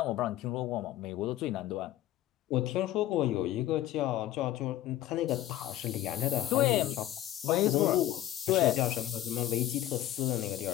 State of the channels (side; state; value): right; quieter; 13.6 dB